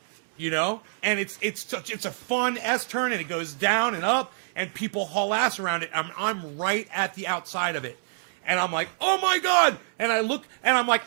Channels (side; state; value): left; silent; digital silence